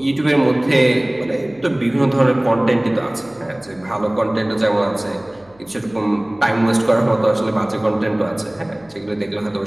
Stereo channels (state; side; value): noise; left; hum, 30 dB below the sound